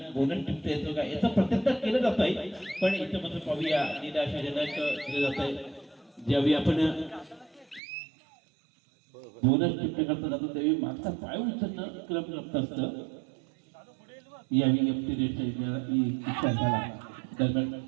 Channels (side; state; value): left; drops out; at 7.8 s